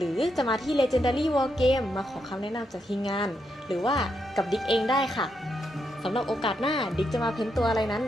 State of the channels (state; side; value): normal; both; correlation 0.81